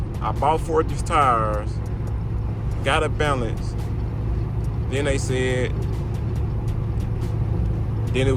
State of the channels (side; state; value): both; identical; correlation 1.00